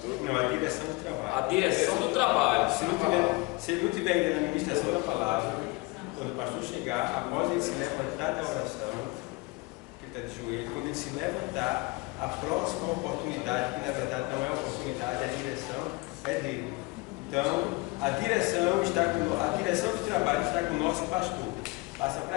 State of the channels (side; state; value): right; quieter; 25.7 dB